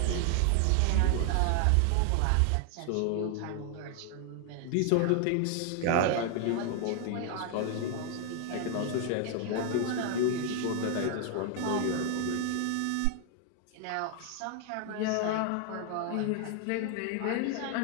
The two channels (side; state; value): both; different; correlation 0.00